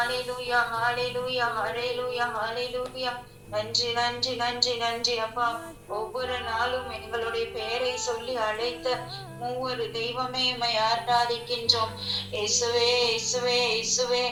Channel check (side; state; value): both; identical; correlation 1.00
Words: ஹalleluya ஹalleluya ஹalleluya. நன்றி நன்றி நன்றி நன்றி அப்பா. ஒவ்வொரு நாளும் எங்களுடைய பெயரை சொல்லி அழைத்த மூவரு தெய்வமே உம்மை ஆராதிக்கின்றோம். இயேசுவே இயேசுவே இயேசுவே.